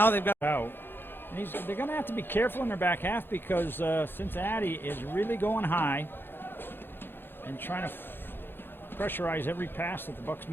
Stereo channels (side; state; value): right; late; 0.10 ms